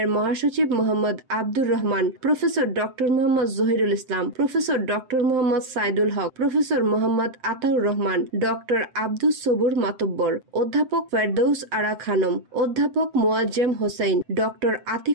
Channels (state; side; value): late; left; 7.8 ms